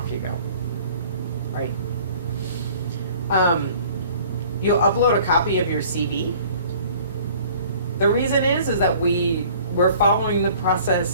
you go, right? You'll upload a copy of your CV. The reason is that we we're following the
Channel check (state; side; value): inverted; both; correlation -0.51